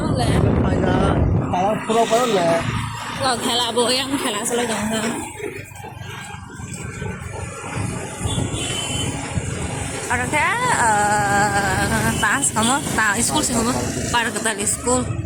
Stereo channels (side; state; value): both; identical; correlation 1.00